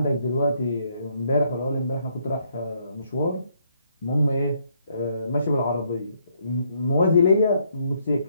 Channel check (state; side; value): inverted; both; correlation -0.71